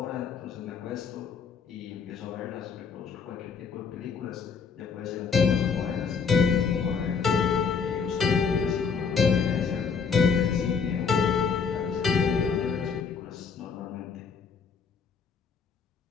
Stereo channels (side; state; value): right; quieter; 5.9 dB